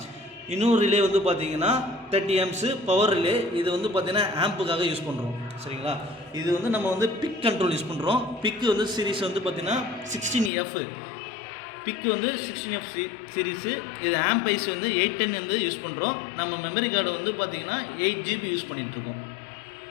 இன்னொரு ரிலே வந்து பார்த்திங்கன்னா 30 ஆம்ப்ஸு பவர் ரிலே. இது வந்து பார்த்திங்கன்னா ஆம்புக்காக யூஸ் பண்ணுறோம். சரிங்களா? இது வந்து நம்ம வந்து பிக் கண்ட்ரோல் யூஸ் பண்ணுறோம். பிக்கு வந்து சீரிஸ் வந்து பார்த்திங்கன்னா 16F. பிக்கு வந்து 16F சீரீஸு. இது ஆம்ப் ஐஸ் வந்து 810 வந்து யூஸ் பண்ணுறோம். நம்ம மெமரி கார்டு வந்து பார்த்திங்கன்னா 8 GB யூஸ் பண்ணிகிட்ருக்கோம்.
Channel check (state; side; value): drops out; right; at 10.5 s